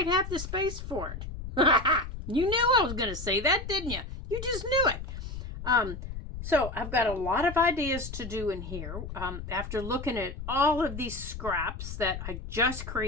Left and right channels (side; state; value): left; noise; rumble, 9 dB below the sound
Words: have the space for it. You knew I was going to say that, didn't you? You just knew it. So I've got a lot of ideas to do in here. After looking at all of these scraps that I just